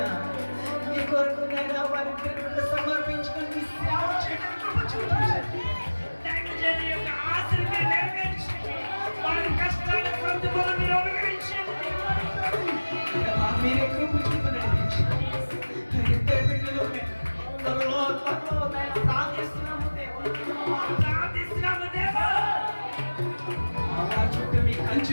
నీ కొరకు నైనా వారి ప్రేమను సమర్పించుకొని నీ సేవ చేయడానికి కృప చూపించండి. దైవజనుని యొక్క ఆశలు మీరు నెరవేర్చండి. వారి కష్టాల ప్రతిఫలం మీరు అనుగ్రహించండి. దేవా, మీరే కృప చూపి నడిపించండి. ఇద్దరు బిడ్డలు త్వరలో నైనా ప్రార్థిస్తున్నాము దేవా. ప్రార్థిస్తున్నాము దేవా. చుట్టూ మీ కంచి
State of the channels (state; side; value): inverted; both; correlation -1.00